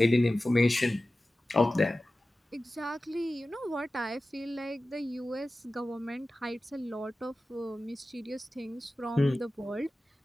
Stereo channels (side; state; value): both; normal; correlation 0.95